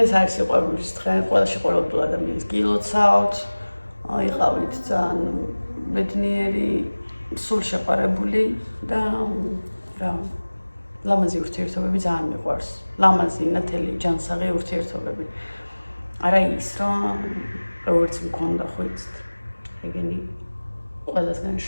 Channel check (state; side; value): inverted; both; correlation -1.00